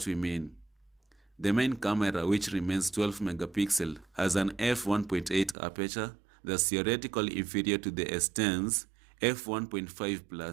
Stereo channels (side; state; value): left; drops out; at 5.6 s